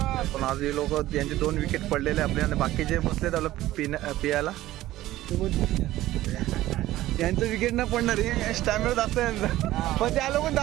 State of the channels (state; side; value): quieter; left; 15.5 dB